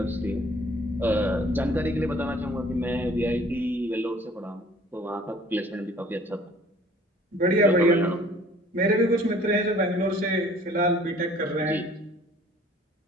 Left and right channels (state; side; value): normal; both; correlation 0.54